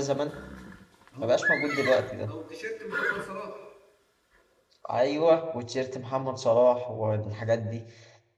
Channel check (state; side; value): identical; both; correlation 1.00